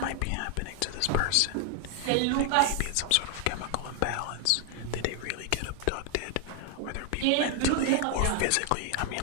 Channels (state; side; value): different; both; correlation 0.00